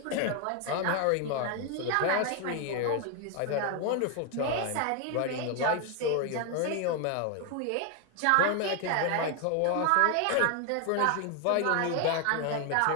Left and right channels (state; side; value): different; both; correlation 0.01